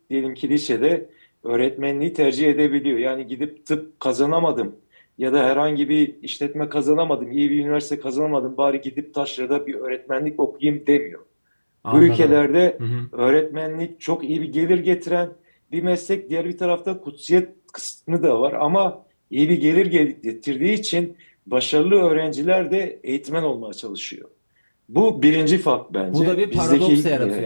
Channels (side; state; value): both; inverted; correlation -1.00